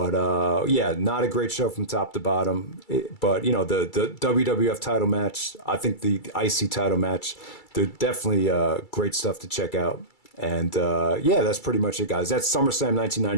not a great show from top to bottom. But the WWF title match, I think the IC title match, they're definitely great stuff to check out. And that's pretty much it, guys. That's SummerSlam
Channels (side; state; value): right; late; 2.3 ms